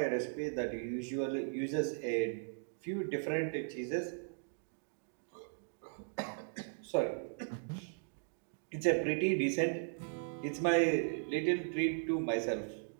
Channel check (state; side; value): silent; left; digital silence